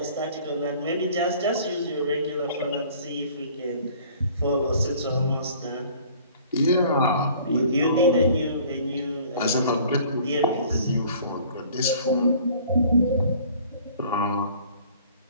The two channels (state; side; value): inverted; both; correlation -0.52